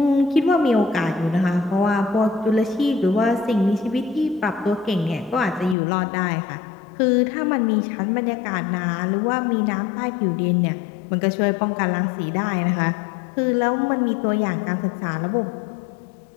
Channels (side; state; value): right; drops out; at 5.8 s